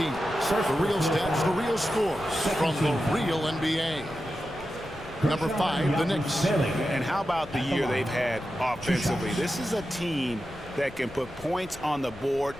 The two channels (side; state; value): left; noise; rumble, 18 dB below the sound